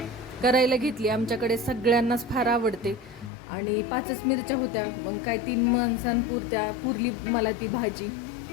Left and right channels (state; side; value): drops out; right; at 3.3 s